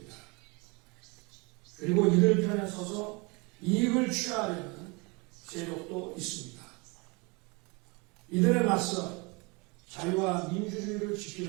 그리고 이들 편에 서서 이익을 취하려는 세력도 있습니다. 이들에 맞서 자유와 민주주의를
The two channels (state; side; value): quieter; left; 28.4 dB